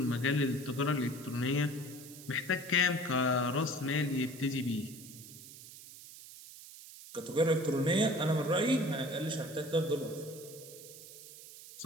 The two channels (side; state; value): right; noise; hiss, 16 dB below the sound